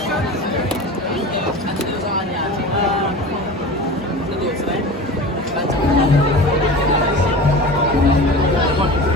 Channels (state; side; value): normal; both; correlation 0.34